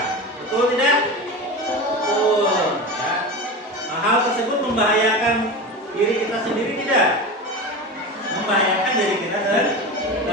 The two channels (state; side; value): normal; both; correlation 0.27